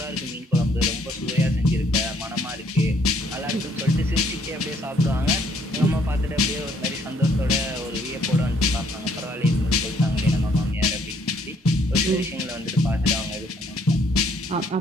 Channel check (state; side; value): normal; both; correlation 0.66